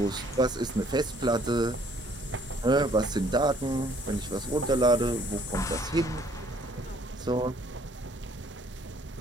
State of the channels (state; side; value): normal; both; correlation 0.61